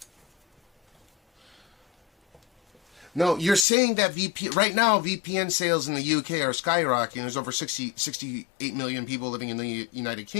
No, you're saying that right now VPN sales in the UK are skyrocketing. There's over 68 million people living in the United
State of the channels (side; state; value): right; drops out; at 3.7 s